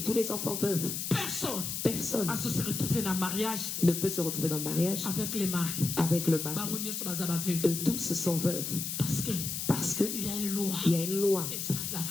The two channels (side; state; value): left; noise; hiss, 4 dB below the sound